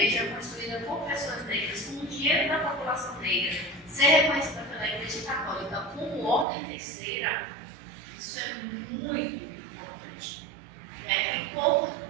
construída por pessoas negras, com o dinheiro da população negra, ser reconhecida pela Igreja Católica como ordem terceira, isso é muito importante. E pouco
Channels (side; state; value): left; drops out; at 6.5 s